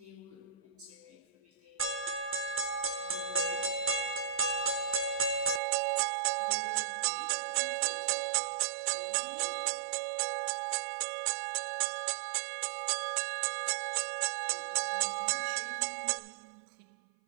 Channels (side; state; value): left; drops out; at 5.6 s